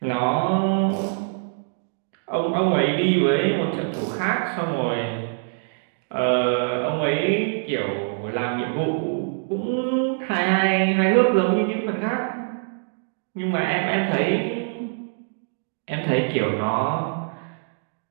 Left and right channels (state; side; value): silent; left; digital silence